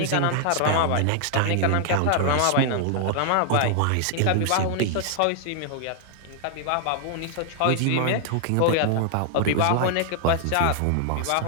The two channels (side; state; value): both; different; correlation 0.00